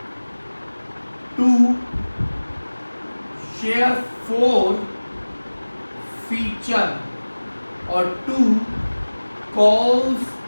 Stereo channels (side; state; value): both; inverted; correlation -1.00